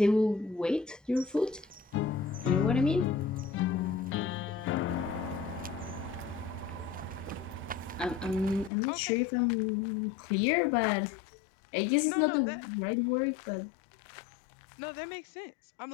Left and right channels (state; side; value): drops out; right; at 8.7 s